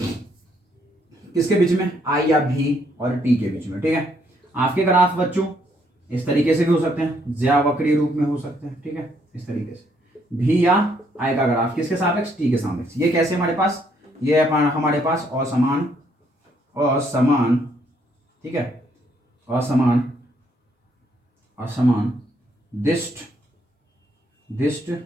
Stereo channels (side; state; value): both; normal; correlation 0.70